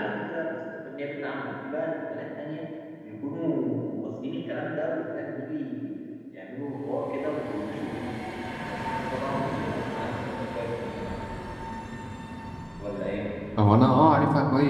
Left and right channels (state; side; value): identical; both; correlation 1.00